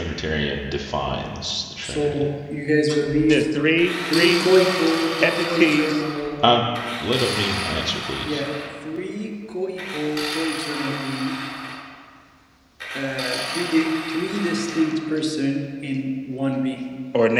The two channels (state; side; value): identical; both; correlation 1.00